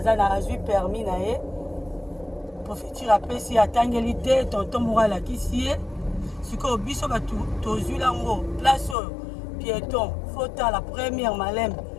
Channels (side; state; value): right; drops out; at 9.0 s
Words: ça na eu permis na ye. Profiter après si atangeli te tonton morala kisi. Siko biso ba to zulango place piéton. Faut la première malem.